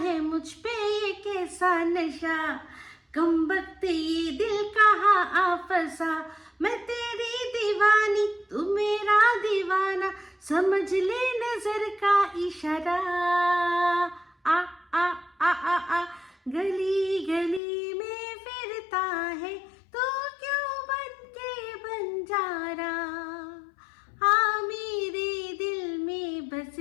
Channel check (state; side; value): drops out; right; at 17.6 s